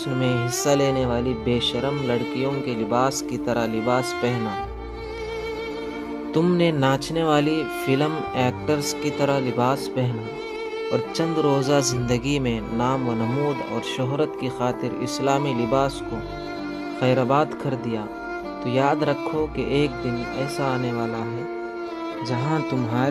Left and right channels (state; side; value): identical; both; correlation 1.00